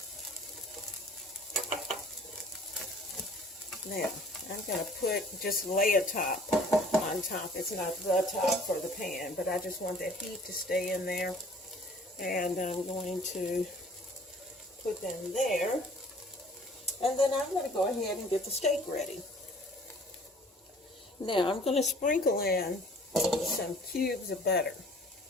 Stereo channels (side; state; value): both; normal; correlation 0.53